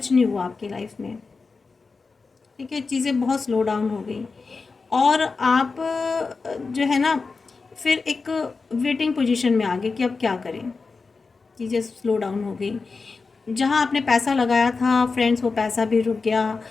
नहीं हुआ आपकी लाइफ में। ठीक है, चीज़ें बहुत स्लो डाउन हो गई और आप जो है ना फिर एक वेटिंग पोजीशन में आ गए कि अब क्या करें। चीज़ें स्लो डाउन हो गई, जहाँ आपने पैसा लगाया था फ्रेंड्स, वो पैसा भी रुक गया।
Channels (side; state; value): right; quieter; 4.4 dB